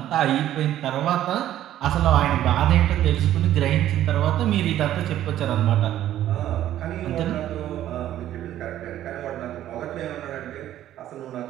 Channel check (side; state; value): left; quieter; 12.5 dB